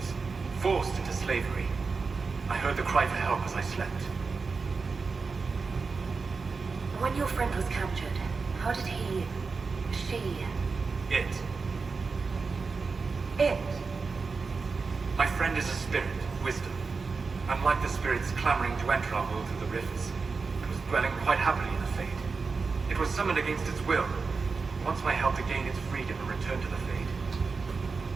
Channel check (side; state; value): left; quieter; 4.6 dB